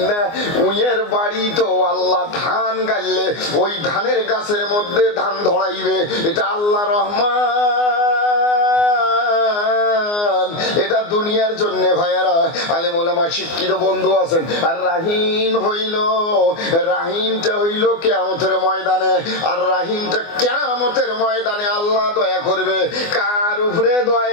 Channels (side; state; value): right; late; 24 ms